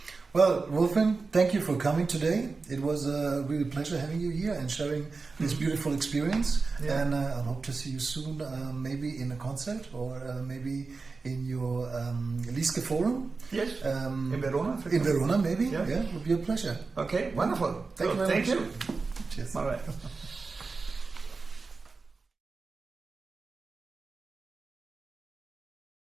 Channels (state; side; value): quieter; left; 4.2 dB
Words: Well, Wulfin, thank you for coming today. It was a real pleasure having you here and sharing this beautiful experience. And I hope to see you soon, maybe in a concert or maybe in your Lieske forum. Yes. In Verona. In Verona, maybe. Yeah, it would be a pleasure. Okay, wonderful. Thank you very much. Thank you. Cheers. All right.